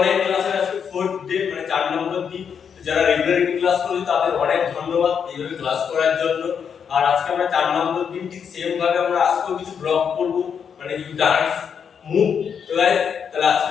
ক্লাসের আজকে 4th ডে মানে 4 নম্বর দিন। যারা রেগুলারলি ক্লাস করছে তাদের অনেক ধন্যবাদ এইভাবে ক্লাস করার জন্য। আর আজকে আমরা 4 নম্বর দিন ঠিক সেম ভাবে আমরা আজকেও কিছু ব্লগ করব, মানে কিছু ডান্স মুভ। তো গাইস, তাহলে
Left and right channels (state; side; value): quieter; right; 7.2 dB